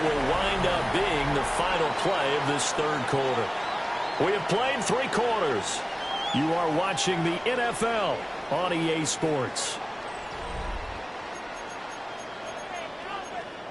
will wind up being the final play of this third quarter. We have played 3 quarters. You are watching the NFL on EA Sports.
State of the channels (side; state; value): both; identical; correlation 1.00